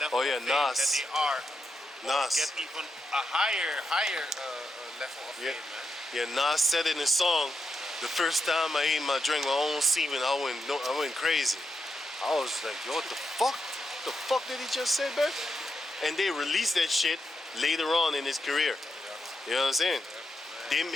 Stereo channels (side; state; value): both; normal; correlation 0.84